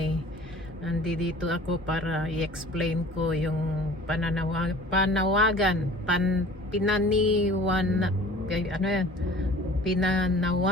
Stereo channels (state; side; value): normal; both; correlation 0.46